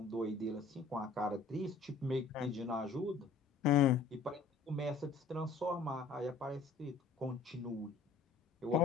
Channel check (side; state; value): right; quieter; 4.6 dB